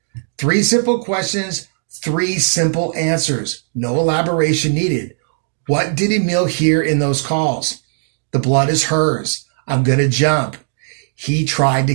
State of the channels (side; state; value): left; silent; digital silence